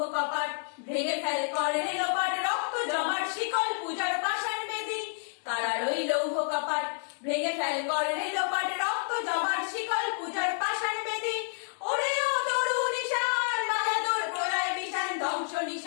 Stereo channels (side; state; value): right; silent; digital silence